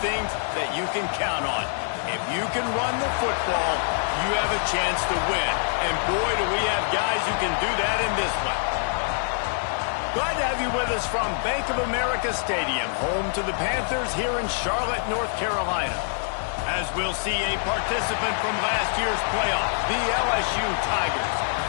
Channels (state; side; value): silent; right; digital silence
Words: that you can count on. If you can run the football, you have a chance to win. And boy, do we have guys who can do that in this one. Glad to have you with us from Bank of America Stadium, home to the Panthers here in Charlotte, North Carolina. As we'll see a participant from last year's playoff, the LSU Tigers,